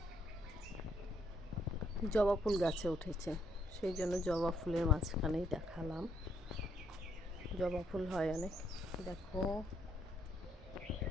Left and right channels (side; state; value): both; normal; correlation 0.73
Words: জবা ফুল গাছে উঠেছে, সেই জন্য জবা ফুলের মাঝখানেই দেখালাম। জবা ফুল হয় অনেক। দেখো,